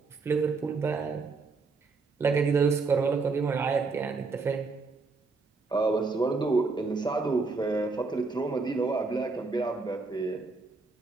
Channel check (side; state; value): left; quieter; 4.2 dB